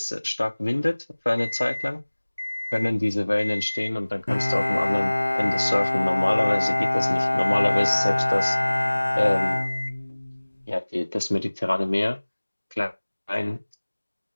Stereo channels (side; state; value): both; inverted; correlation -1.00